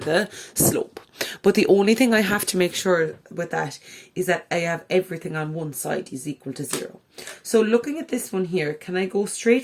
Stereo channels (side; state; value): both; identical; correlation 1.00